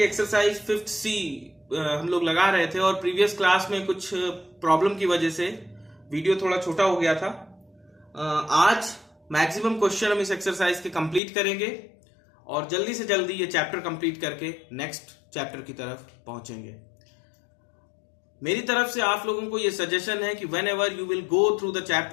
exercise 5th C हम लोग लगा रहे थे और प्रीवियस क्लास में कुछ प्रॉब्लम की वजह से वीडियो थोड़ा छोटा हो गया था. आज मैक्सिमम क्वेश्चन हम इस एक्सरसाइज के कंप्लीट करेंगे और जल्दी से जल्दी ये चैप्टर कंप्लीट करके नेक्स्ट चैप्टर की तरफ पहुंचेंगे. मेरी तरफ से आप लोगों को ये सजेशन है कि when ever you will go through the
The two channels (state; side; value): drops out; right; at 11.2 s